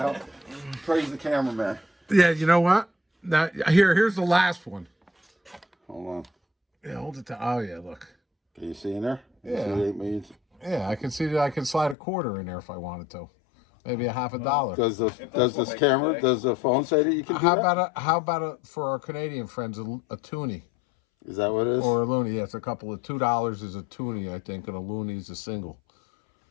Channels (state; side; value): drops out; right; at 12.0 s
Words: Praise the cameraman. Yeah, you know what? Now here's the last one. Hold on. Yeah, hold it. Oh yeah, look. Can you see in there? You Yeah. see the 8 million? Yeah, I can see that I can slide a quarter in there if I wanted to. Maybe a half a dollar. Does this what camera, they say. does the phone say that you can do that? How about for our Canadian friends a toonie Is that what it is? or a loony? Yeah, it's a couple of $2 is a toonie, I think, and a loony is a single.